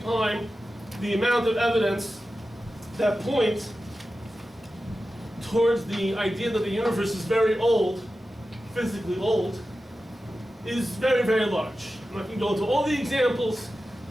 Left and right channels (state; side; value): normal; both; correlation 0.93